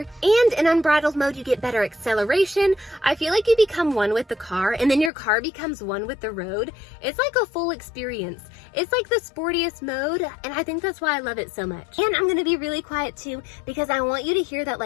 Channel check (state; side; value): drops out; right; at 5.1 s